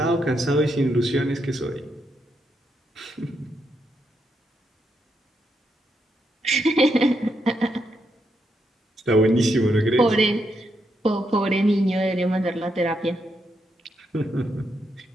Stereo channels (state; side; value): normal; both; correlation 0.81